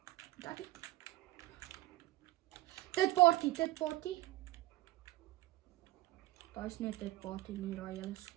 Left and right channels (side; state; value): left; quieter; 17.7 dB